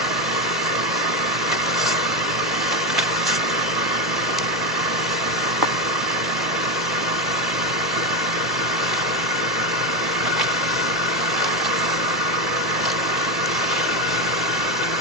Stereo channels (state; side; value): normal; both; correlation 0.13